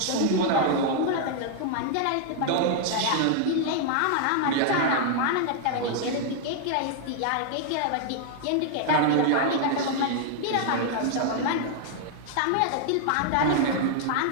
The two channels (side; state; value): both; different; correlation 0.00